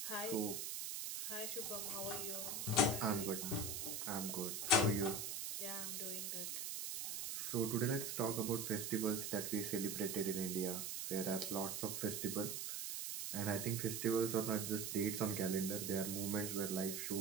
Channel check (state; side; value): noise; right; hiss, 3 dB below the sound